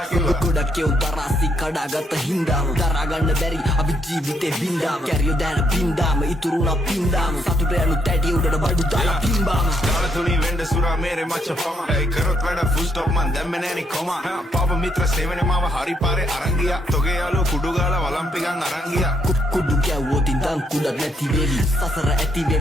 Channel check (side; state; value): both; normal; correlation 0.74